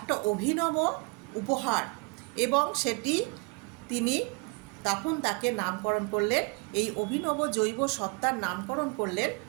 অভিনব উপহার, এবং সেটি তিনি তখন তাকে নামকরণ করলেন, এই অভিনব জৈব সত্তার নামকরণ করলেন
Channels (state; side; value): quieter; left; 32.5 dB